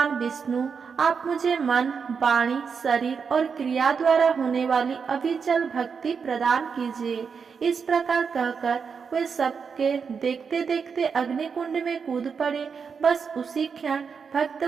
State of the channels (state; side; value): quieter; left; 6.0 dB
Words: विष्णु, आप मुझे मन, वाणी, शरीर और क्रिया द्वारा होने वाली अविचल भक्ति प्रदान कीजिए। इस प्रकार कहकर वे सबके देखते देखते अग्निकुंड में कूद पड़े। बस उसी क्षण